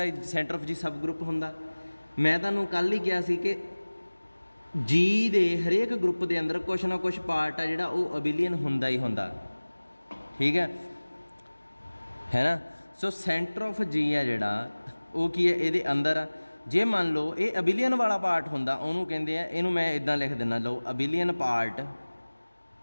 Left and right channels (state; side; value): inverted; both; correlation -1.00